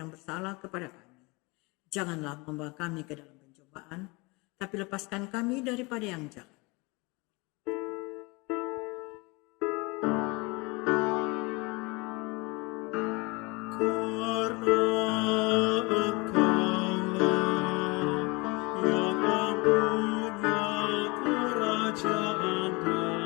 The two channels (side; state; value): right; quieter; 26.7 dB